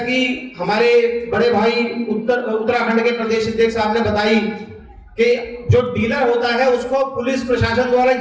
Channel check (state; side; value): identical; both; correlation 1.00